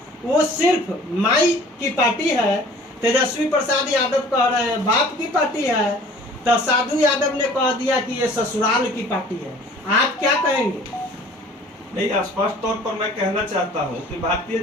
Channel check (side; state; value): both; normal; correlation 0.50